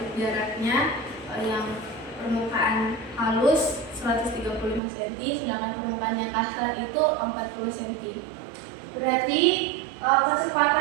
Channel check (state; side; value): drops out; left; at 4.8 s